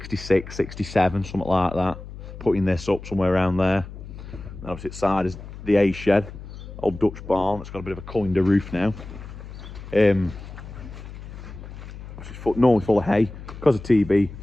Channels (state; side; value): noise; left; hum, 13 dB below the sound